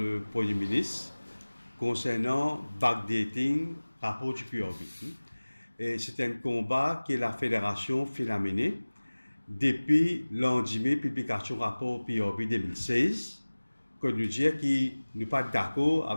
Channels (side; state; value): both; inverted; correlation -1.00